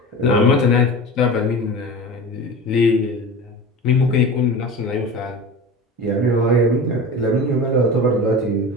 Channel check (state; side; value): normal; both; correlation 0.32